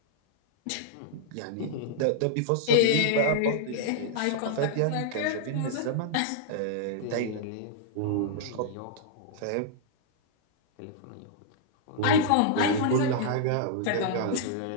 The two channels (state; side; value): different; both; correlation -0.01